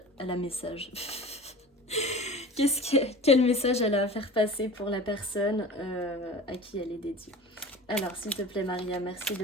Quel message elle a à faire passer pour la personne à qui elle est dédiée. Alors, s'il te plaît, Maria, merci de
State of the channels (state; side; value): normal; both; correlation 0.37